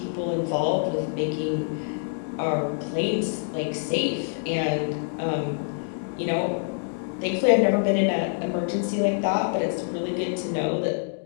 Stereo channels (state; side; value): silent; right; digital silence